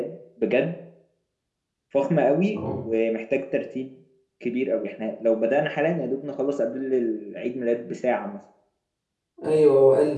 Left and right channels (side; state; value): both; identical; correlation 1.00